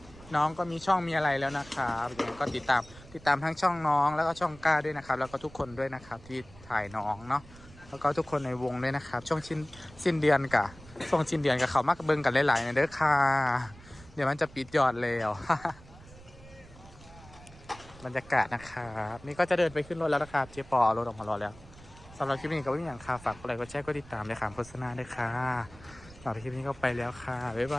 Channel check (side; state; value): right; noise; rumble, 21 dB below the sound